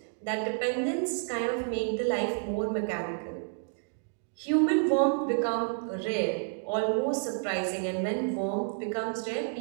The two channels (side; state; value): left; silent; 57 dB below the other